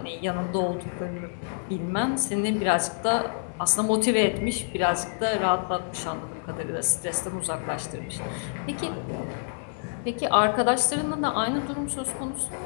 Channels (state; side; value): silent; right; digital silence